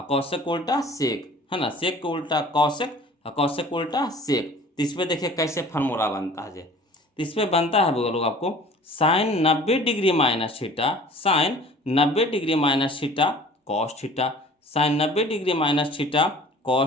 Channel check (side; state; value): both; normal; correlation 0.47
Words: कौशिक को उल्टा सेक, है ना, सेक को उल्टा कौशिक और कौशिक को उल्टा सेक। तो इस पर देखिए कैसे फार्मूला बनता है। तो इस पर बनता है वो लोग आपको sine 90 degree minus theta, sine 90 degree minus theta cos theta, sine 90 degree minus theta